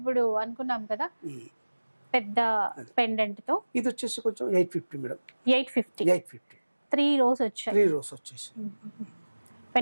అనుకున్నాం కదా పెద్ద పెండెంట్ తో, ఇది వచ్చేసి కొంచెం 850 మేడం. 850 3 రోస్ వచ్చాయి. 3 రోస్ వచ్చేసి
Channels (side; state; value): both; inverted; correlation -1.00